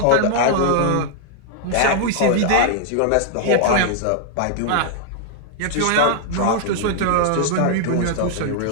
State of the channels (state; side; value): different; both; correlation 0.00